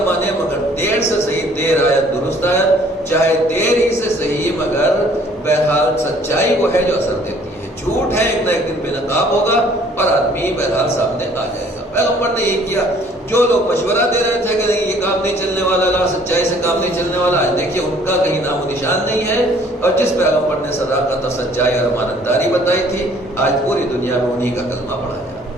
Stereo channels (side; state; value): both; normal; correlation 0.57